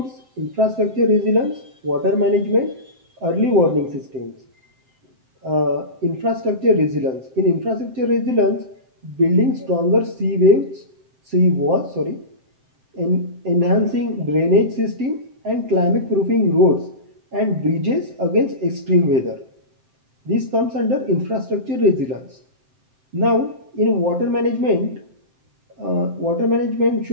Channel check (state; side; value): late; left; 7.7 ms